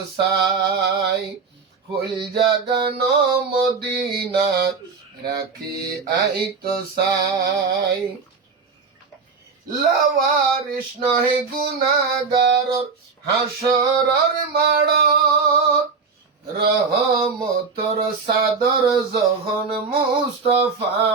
সাই। ফুল জাগানো মদিনাত রাখি আইতো সাই। লাওয়ারিস নহে গুনাহগারর হাসরর মাড়ত, রহমতর সাদর যখন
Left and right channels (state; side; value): quieter; left; 5.0 dB